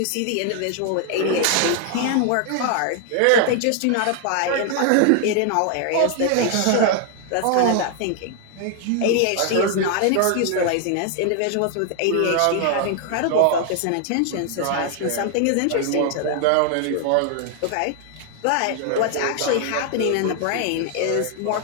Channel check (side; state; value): both; different; correlation 0.00